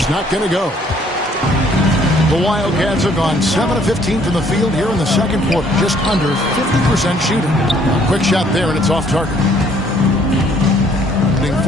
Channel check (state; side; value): normal; both; correlation 0.62